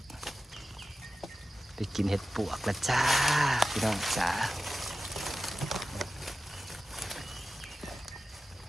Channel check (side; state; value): both; normal; correlation 0.94